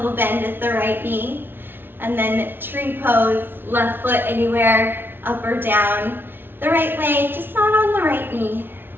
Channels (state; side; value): late; left; 0.10 ms